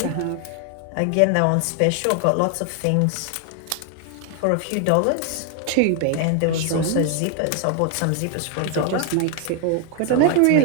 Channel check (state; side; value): different; both; correlation 0.00